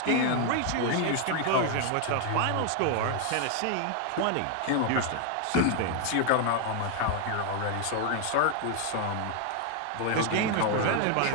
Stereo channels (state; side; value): different; both; correlation 0.01